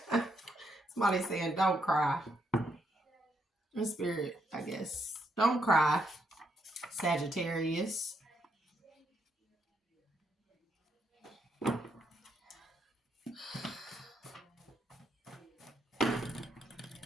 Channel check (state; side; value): normal; both; correlation 0.77